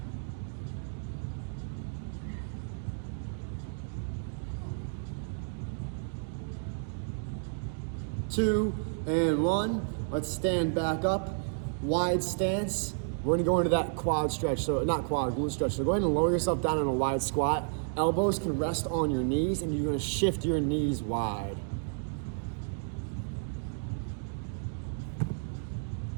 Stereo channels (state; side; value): silent; left; digital silence